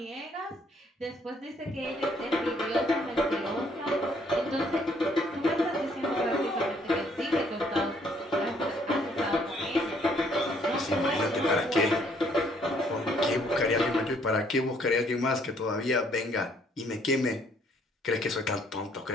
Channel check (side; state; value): both; normal; correlation 0.65